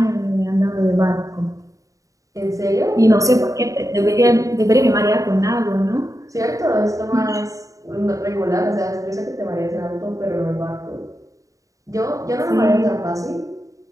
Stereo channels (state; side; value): late; left; 0.16 ms